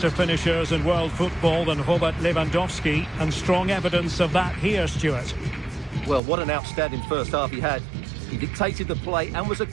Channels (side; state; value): left; drops out; at 6.2 s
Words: finishers in world football than Robert Lewandowski, and strong evidence of that here, Stuart. Well, what an outstanding first half he had. He dictated the play and was a